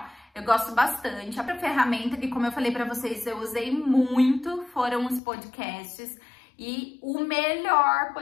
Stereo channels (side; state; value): right; drops out; at 5.2 s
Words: Eu gosto bastante. A ferramenta que, como eu falei pra vocês, eu usei muito, foram os podcasts. E o melhor